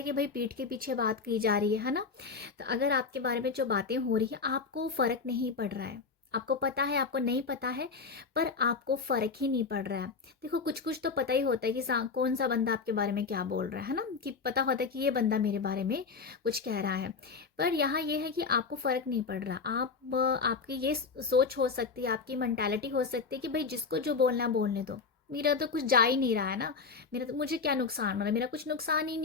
कि भाई पीठ के पीछे बात की जा रही है ना। तो अगर आपके बारे में जो बातें हो रही है आपको फ़र्क नहीं पड़ रहा है, आपको पता है, आपको नहीं पता है, पर आपको फ़र्क ही नहीं पड़ रहा है। देखो, कुछ कुछ तो पता ही होता है कि कौन सा बंदा आपके बारे में क्या बोल रहा है ना, कि पता होता है कि ये बंदा मेरे बारे में कुछ कह रहा है। पर यहाँ ये है कि आपको फ़र्क नहीं पड़ रहा। आपकी ये सोच हो सकती है, आपकी मेंटालिटी हो सकती है कि भाई जिसको जो बोलना बोलने दो, मेरा तो कुछ जा ही नहीं रहा है ना, मेरा तो, मुझे क्या नुकसान हो रहा है, मेरा कुछ नुकसान ही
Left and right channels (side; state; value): right; quieter; 4.9 dB